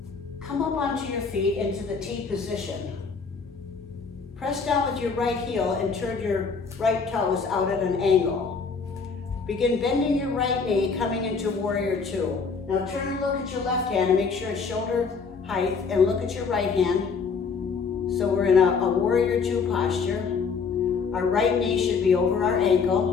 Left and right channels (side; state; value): right; quieter; 5.2 dB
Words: come up onto your feet into the T position. Press down with your right heel and turn your right toes out at an angle. Begin bending your right knee, coming into warrior two. Now turn and look at your left hand and make sure it's shoulder height, and look at your right hand. So we're in a warrior two posture. Our right knee should be over our